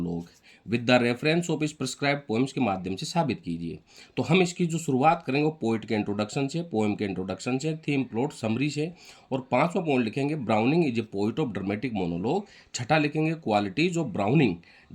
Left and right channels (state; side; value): identical; both; correlation 1.00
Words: with the reference of इस प्रिस्क्राइब्ड पोएम्स के माध्यम से साबित कीजिए। तो हम इसकी जो शुरुआत करेंगे वो पोइट के इंट्रोडक्शन से, पोएम के इंट्रोडक्शन से, थीम प्लॉट समरी से, और पांचवा पॉइंट लिखेंगे Browning is a poet of dramatic monologue. छठा लिखेंगे qualities of Browning